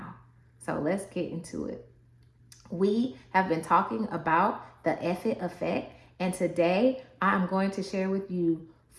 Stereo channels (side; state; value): both; identical; correlation 1.00